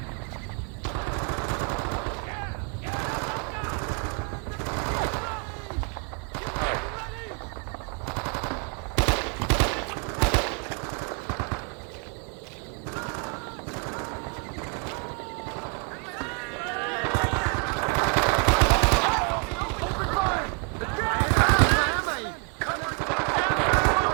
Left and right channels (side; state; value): left; quieter; 36.8 dB